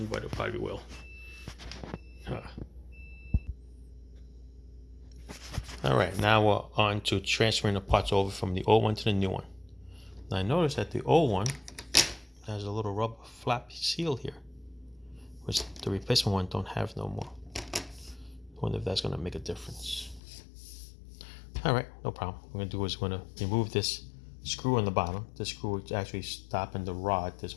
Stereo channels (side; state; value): right; drops out; at 20.2 s